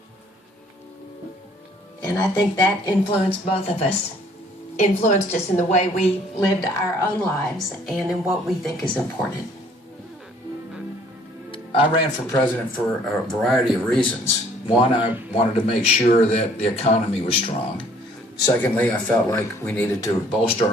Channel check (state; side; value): normal; both; correlation 0.59